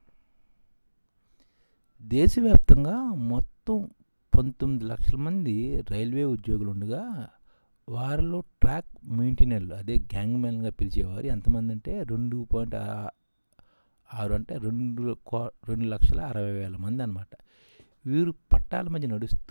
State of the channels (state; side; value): inverted; both; correlation -1.00